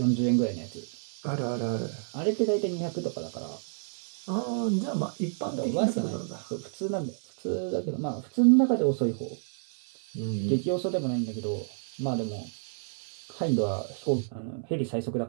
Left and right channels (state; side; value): silent; left; 58 dB below the other